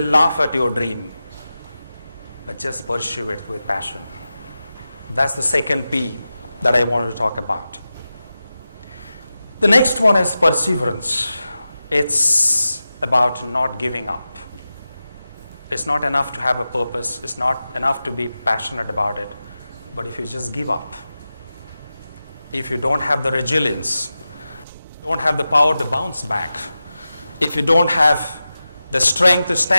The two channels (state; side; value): inverted; both; correlation -0.93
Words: laugh at your dream. But just pursue it with passion. That's the second P that I wanted to talk about. The next one is perseverance. It's about not giving up. It's not enough to have a purpose. It's not enough to be passionate about it. But if you just give up, if you don't have the resilience, don't have the power to bounce back, if you don't have the strength to